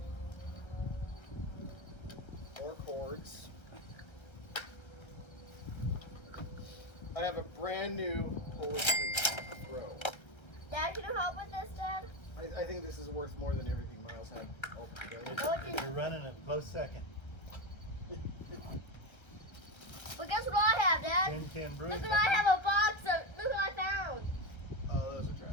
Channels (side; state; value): right; late; 1.3 ms